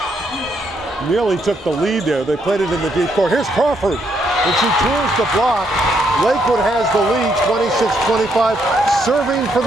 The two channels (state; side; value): normal; both; correlation 0.75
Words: nearly took the lead there. They played it in the deep court. Here's Crawford, and she turns the block. Lakewood has the lead, 26-25, serving for